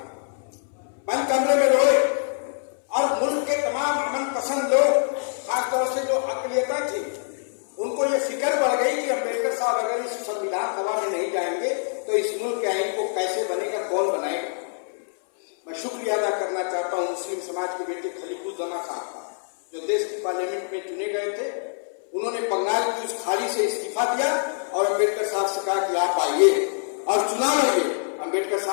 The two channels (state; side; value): silent; right; 62 dB below the other